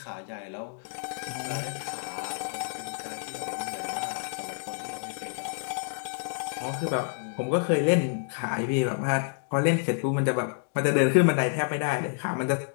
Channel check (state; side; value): silent; right; digital silence